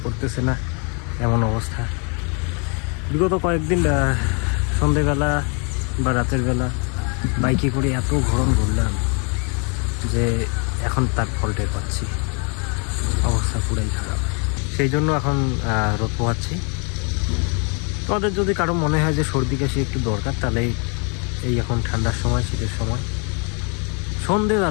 করতেছে না, এমন অবস্থা। বিগত কয়েকদিন সন্ধেবেলা বা রাতের বেলা বাইকে করে এত গরম ঘুরলাম যে এখন তার ফল টের পাচ্ছি, অবস্থা পুরাই খারাপ। সেই জন্য এখন রোদ পোহাচ্ছি। তোমাদের যদি কারো মনে হয় যে সর্দি কাশি একটু দরকার, তাহলে এই এখন ঠান্ডার সময়, শীতের সময়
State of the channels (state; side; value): quieter; right; 36.1 dB